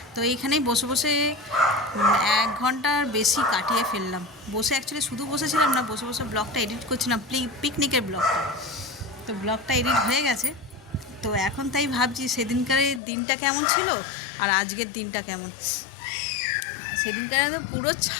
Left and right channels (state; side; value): drops out; right; at 13.0 s